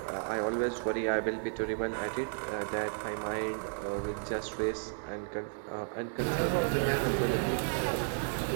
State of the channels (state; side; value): silent; left; digital silence